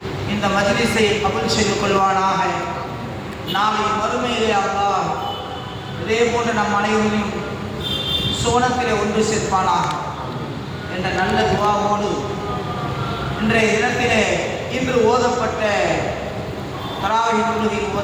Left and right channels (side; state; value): both; identical; correlation 1.00